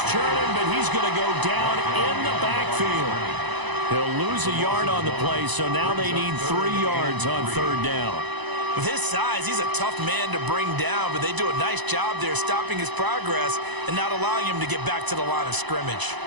churning, but he's going to go down in the backfield. He'll lose a yard on the play, so now they need 3 yards on 3rd down. With his size, he's a tough man to bring down, but they do a nice job there stopping his progress and not allowing him to get back to the line of scrimmage.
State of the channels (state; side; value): late; left; 1.0 ms